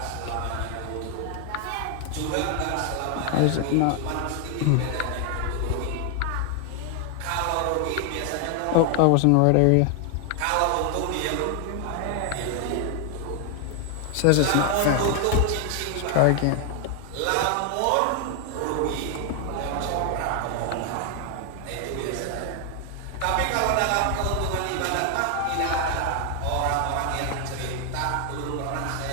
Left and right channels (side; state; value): both; different; correlation 0.00